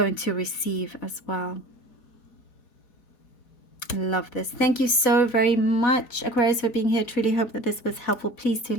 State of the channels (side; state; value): right; late; 4.0 ms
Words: to receive as well. I love this. Thank you so very much, Aquarius, for being here. Truly hope that this was helpful. Please do